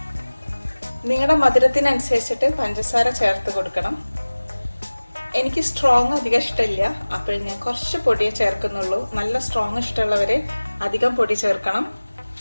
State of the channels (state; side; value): inverted; both; correlation -1.00